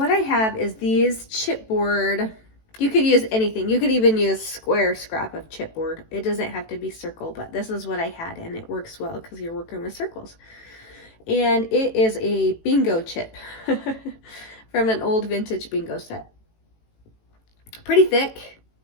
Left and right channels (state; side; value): late; right; 18 ms